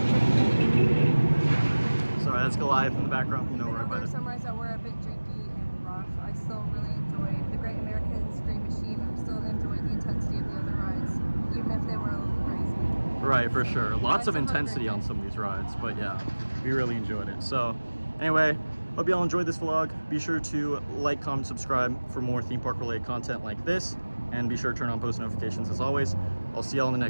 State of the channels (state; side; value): inverted; both; correlation -1.00